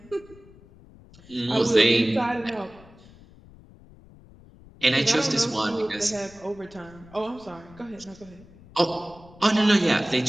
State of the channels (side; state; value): left; noise; rumble, 23 dB below the sound